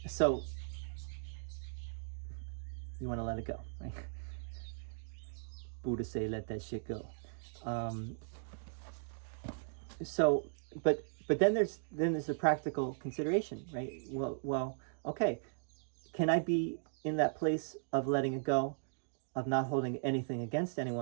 So, you want to let it go, right? Buddha say, let that shit go. But then there's a practical consideration, right? Well, okay, can I be in that place of letting it go, of not holding anything against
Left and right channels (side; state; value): left; silent; digital silence